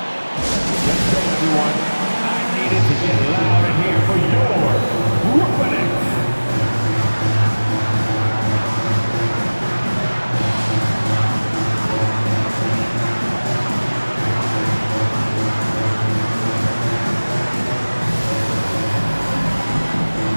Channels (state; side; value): inverted; both; correlation -1.00